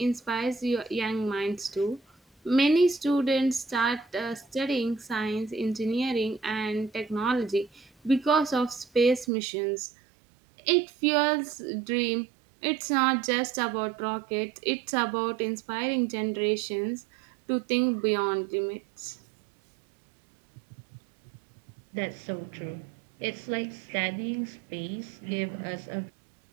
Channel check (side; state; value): left; drops out; at 9.2 s